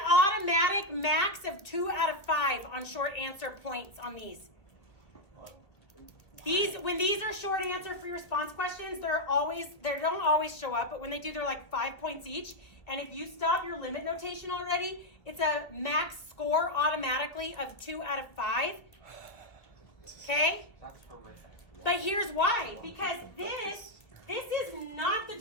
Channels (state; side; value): late; right; 2.4 ms